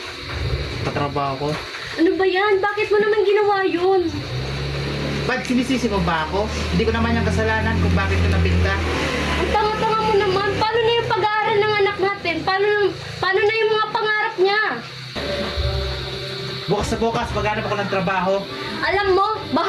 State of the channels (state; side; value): identical; both; correlation 1.00